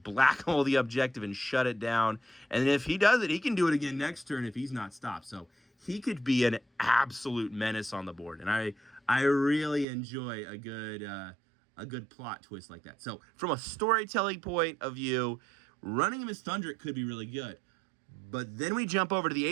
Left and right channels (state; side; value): drops out; left; at 9.9 s